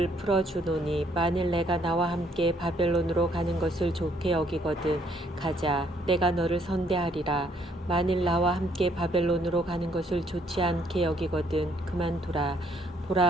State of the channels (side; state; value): both; normal; correlation 0.67